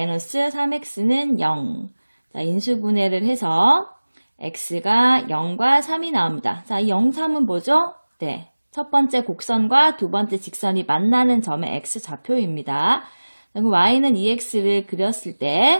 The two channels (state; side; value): inverted; both; correlation -1.00